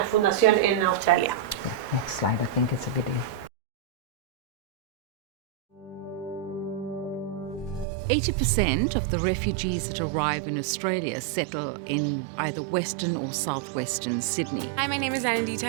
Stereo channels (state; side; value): drops out; left; at 7.9 s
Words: fundación en Australia. Next slide, I think it's a video. 80% of the refugees that arrive in Australia settle in either Western or Southwestern Sydney. Hi, my name is Anandita